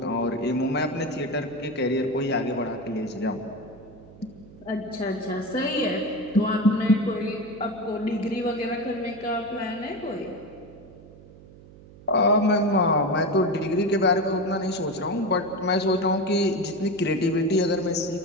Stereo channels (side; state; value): right; noise; hum, 21 dB below the sound